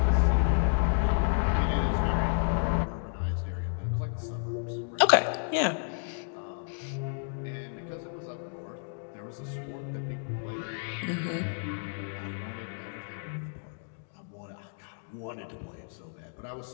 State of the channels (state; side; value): silent; right; 57 dB below the other